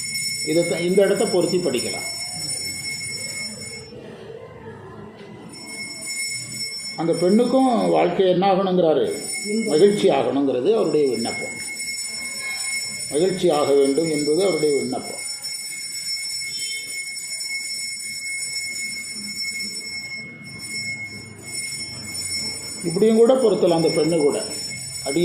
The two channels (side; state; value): both; identical; correlation 1.00